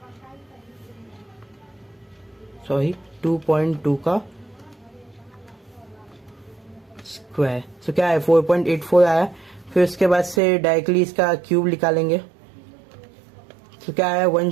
2.2 का स्क्वायर, सो क्या है 4.84 आया। फिर उसके बाद से डायरेक्टली इसका क्यूब निकालेंगे तो क्या है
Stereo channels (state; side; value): drops out; left; at 10.4 s